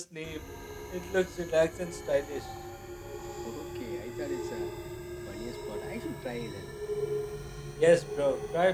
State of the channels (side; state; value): both; identical; correlation 1.00